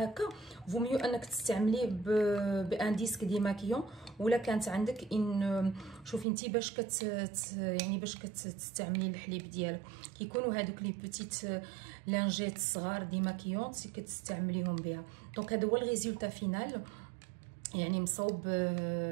هكا فو ميو انك تستعمليه بان ديسك ديماكيون. ولا كانت عندك ان شوفي انت باش يعني باش كتستعملي الحليب ديالك كيكونوا هذوك لي بوتيت لانجيت صغار ديماكيون كتستعمليهم بها. دونك هذا هو الريزولتا فينال، يعني مصوب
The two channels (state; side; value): drops out; left; at 6.2 s